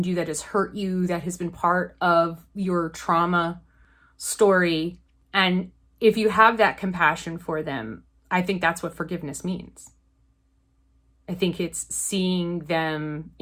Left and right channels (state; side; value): identical; both; correlation 1.00